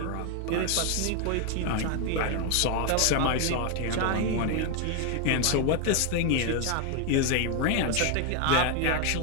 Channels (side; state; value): both; different; correlation 0.01